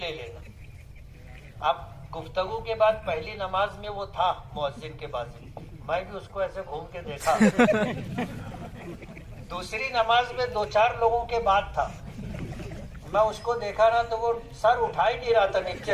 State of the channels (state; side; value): identical; both; correlation 1.00